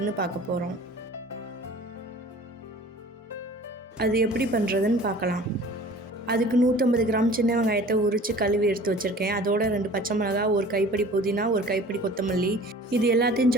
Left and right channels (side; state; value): both; normal; correlation 0.45